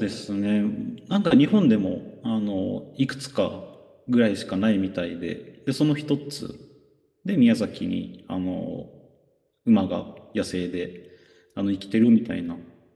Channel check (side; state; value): both; identical; correlation 1.00